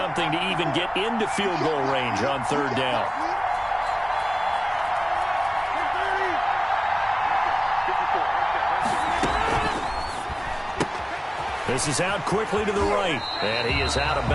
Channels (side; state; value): both; identical; correlation 1.00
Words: to even get into field goal range on 3rd down. This is out quickly to the right, and he is out of